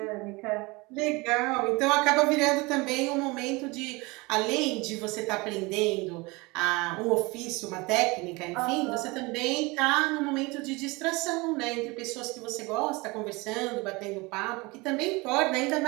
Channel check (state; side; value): quieter; left; 24.7 dB